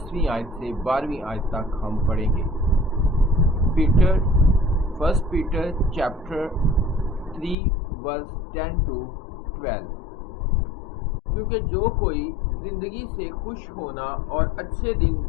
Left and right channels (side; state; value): right; drops out; at 7.6 s